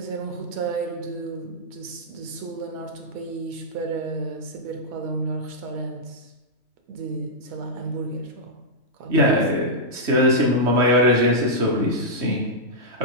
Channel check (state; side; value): late; left; 3.1 ms